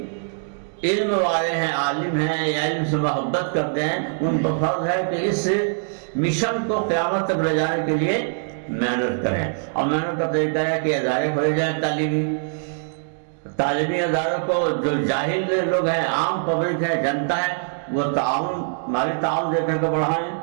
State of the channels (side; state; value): left; silent; digital silence